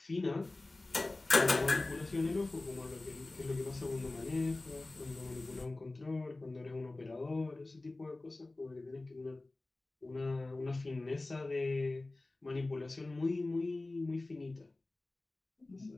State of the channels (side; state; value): right; quieter; 3.0 dB